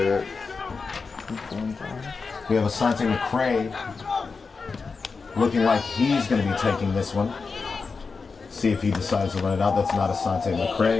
we have Asante McCray looking like he's going to be taking this one. See if he decides to run it out. That's not Asante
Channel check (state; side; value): quieter; right; 4.7 dB